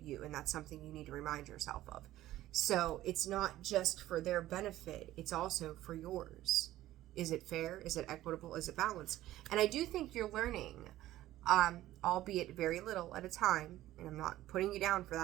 And that's something you need to remind yourself of. So it's not just for their benefit, it's also for yours. Is it fair? Is it equitable? Is it balanced? And I do think you're learning, albeit very little at a time, and I'm not putting you down for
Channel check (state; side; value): quieter; left; 14.8 dB